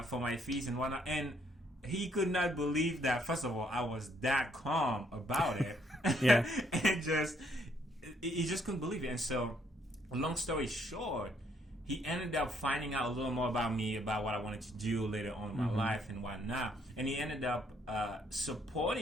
for my fees and whatnot. And he could not believe that, first of all, I was that calm about it. And he just couldn't believe it. And so, long story short, he ended up finding out a little more about me, about what I wanted to do later on in my life and whatnot. And he ended up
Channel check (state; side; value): normal; both; correlation 0.69